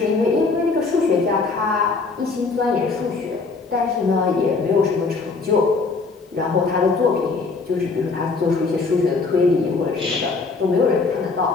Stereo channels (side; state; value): right; quieter; 4.2 dB